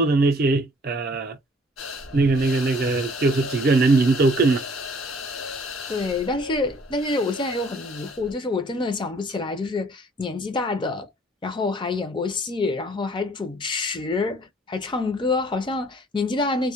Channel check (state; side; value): normal; both; correlation 0.57